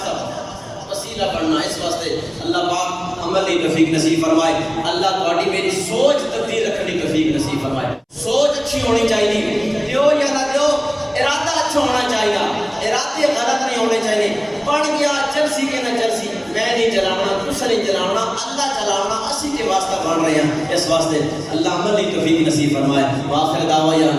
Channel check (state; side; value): identical; both; correlation 1.00